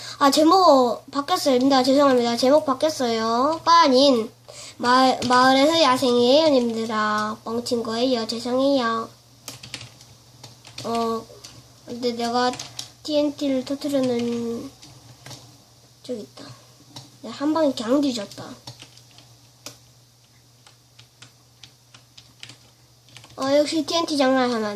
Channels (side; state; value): both; identical; correlation 1.00